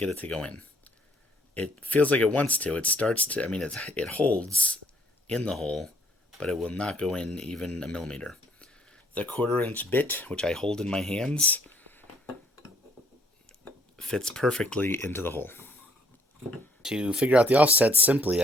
it to go in. It feels like it wants to. It starts to, it holds in the hole, but it will not go in even a millimeter. The 1/4 inch bit, which I hold in my hands, fits perfectly into the hole. To figure out the offset simply,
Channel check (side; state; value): both; normal; correlation 0.63